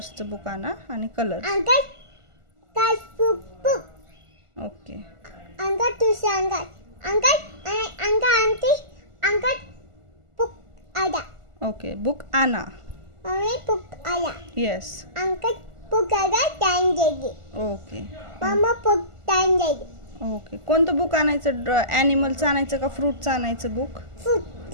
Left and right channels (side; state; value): left; late; 1.4 ms